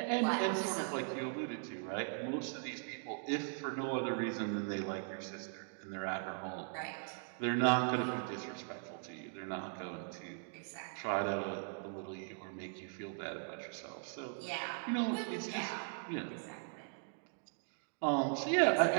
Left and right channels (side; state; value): left; silent; 52 dB below the other